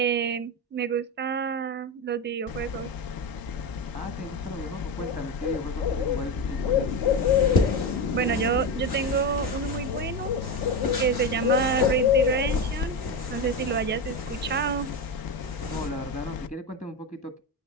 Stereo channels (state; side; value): normal; both; correlation 0.16